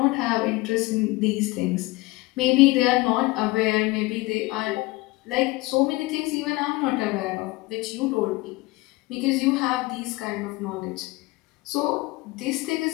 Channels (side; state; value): right; quieter; 21.5 dB